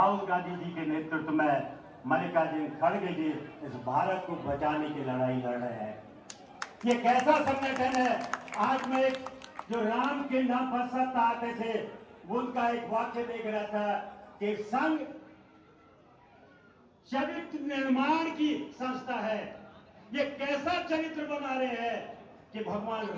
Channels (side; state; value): both; identical; correlation 1.00